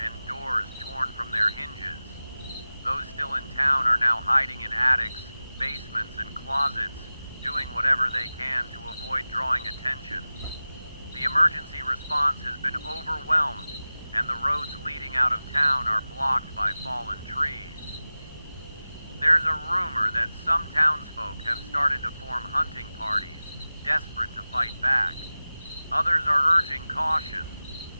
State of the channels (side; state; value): both; inverted; correlation -0.97